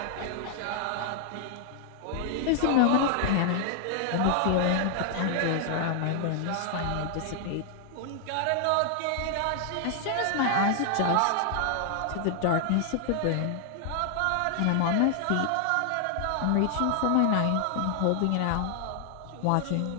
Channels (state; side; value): different; both; correlation 0.00